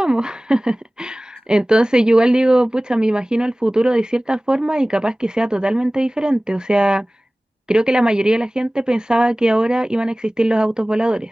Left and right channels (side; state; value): both; normal; correlation 0.98